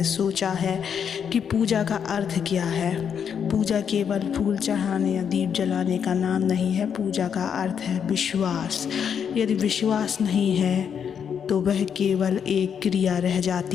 सोचा है कि पूजा का अर्थ क्या है? पूजा केवल फूल चढ़ाने या दीप जलाने का नाम नहीं है। पूजा का अर्थ है विश्वास। यदि विश्वास नहीं है तो वह केवल एक क्रिया रह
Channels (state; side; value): quieter; right; 7.6 dB